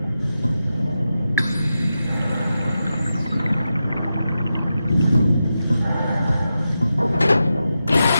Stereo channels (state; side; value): inverted; both; correlation -0.89